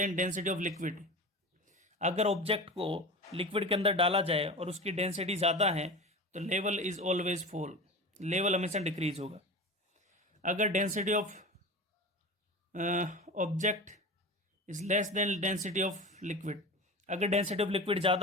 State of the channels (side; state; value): both; normal; correlation 0.30